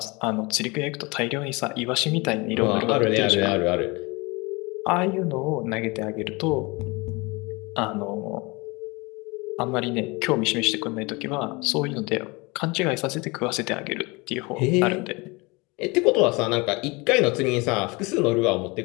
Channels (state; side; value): quieter; right; 25.9 dB